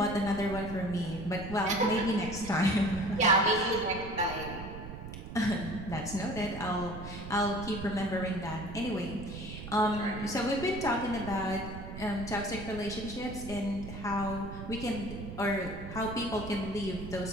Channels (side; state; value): right; noise; rumble, 10 dB below the sound